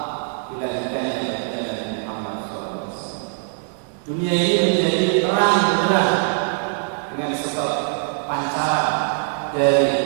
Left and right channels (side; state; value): left; silent; digital silence